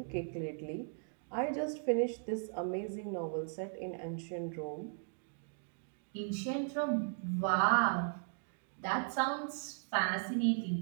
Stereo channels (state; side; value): silent; left; digital silence